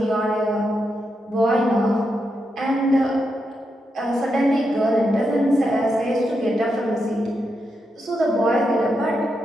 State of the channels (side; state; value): both; normal; correlation 0.84